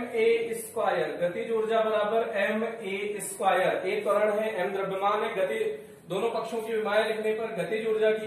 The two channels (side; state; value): both; identical; correlation 1.00